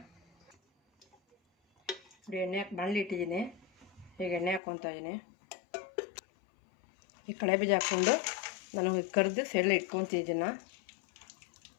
ನೋಡಿ, ಎಣ್ಣೆ ಬಾಣಲಿ ಇಟ್ಟಿದ್ದೀನಿ. ಈಗ ಎಣ್ಣೆ ಹಾಕ್ಕೊತಾ ಇದ್ದೀನಿ. ಈ ಕಳೆ ಬೀಜ ಹಾಕ್ಕೊಂಡು ನಾನು ಕರೆದು ಸೈಡಲ್ಲಿ ಇಟ್ಕೊತೀನಿ. ಇದನ್ನು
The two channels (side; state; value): right; drops out; at 4.6 s